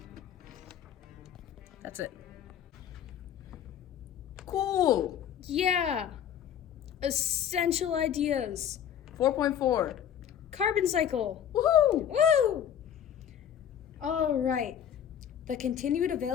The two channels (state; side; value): quieter; right; 9.4 dB